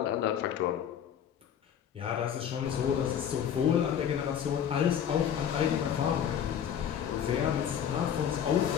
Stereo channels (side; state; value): right; quieter; 8.9 dB